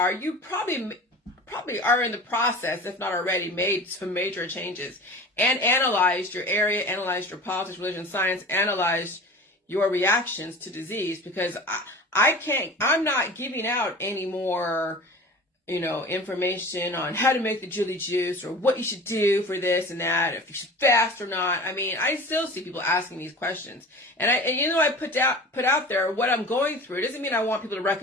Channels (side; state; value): both; normal; correlation 0.38